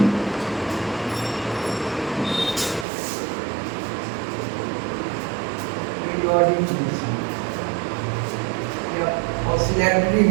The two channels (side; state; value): left; drops out; at 2.9 s